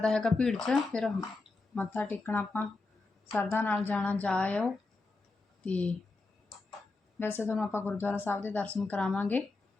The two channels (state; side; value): quieter; right; 3.5 dB